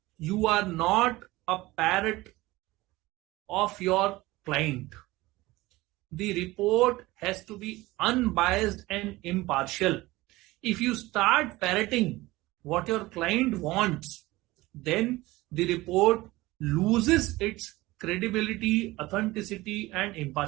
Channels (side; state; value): left; quieter; 19.5 dB